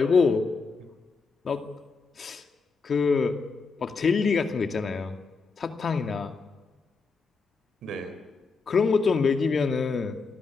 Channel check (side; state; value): right; quieter; 4.6 dB